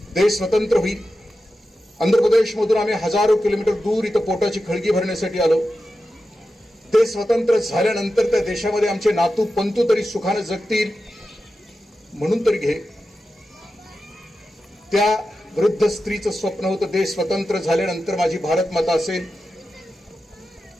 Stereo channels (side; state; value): both; normal; correlation 0.91